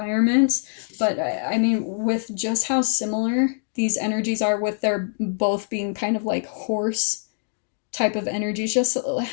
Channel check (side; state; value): right; silent; digital silence